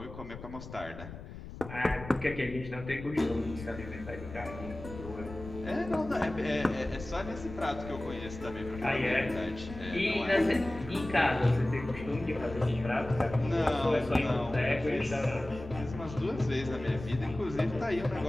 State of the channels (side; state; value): left; noise; rumble, 12 dB below the sound